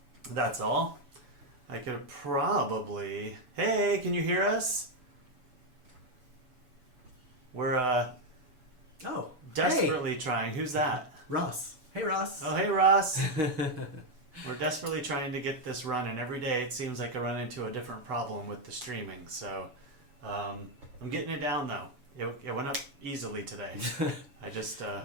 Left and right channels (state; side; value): late; left; 7.0 ms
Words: That's all. I could probably... Hey, can you hear us? We're Oh. desperately trying. Who's that? Ross. Hey, Ross. Oh, hey, Ross. We're desperately trying to get this running. Every day it seems like I run into a different problem with the streaming. So I'm getting it down, though. It went up easily today. I just...